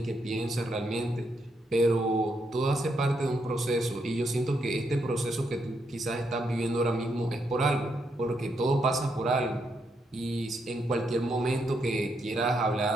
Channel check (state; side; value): normal; both; correlation 0.79